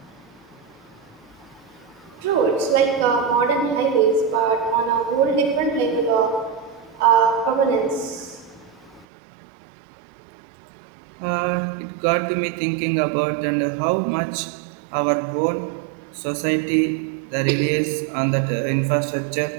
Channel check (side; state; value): left; drops out; at 9.1 s